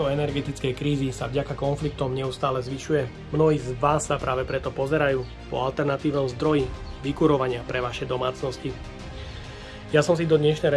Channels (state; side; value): identical; both; correlation 1.00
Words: energetickej krízy sa vďaka konfliktom neustále zvyšuje. Mnohí z vás sa práve preto pozerajú po alternatívnom zdroji vykurovania pre vaše domácnosti. Ja som si do